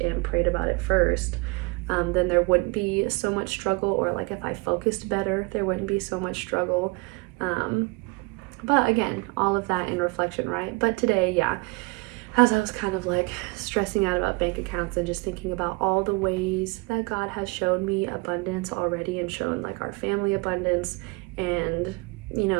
prayed about it first. Then there wouldn't be so much struggle, or like if I focused better, there wouldn't be so much struggle. But again, all of that in reflection, right? But today, yeah, as I was kind of like stressing out about bank accounts and just thinking about all the ways that God has shown me abundance already, and shown like our family abundance, and you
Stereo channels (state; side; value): quieter; left; 27.2 dB